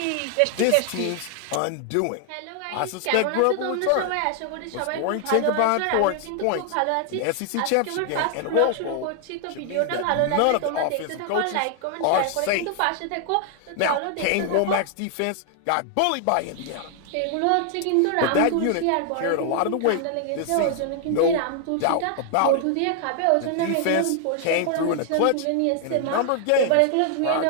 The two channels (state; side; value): different; both; correlation 0.00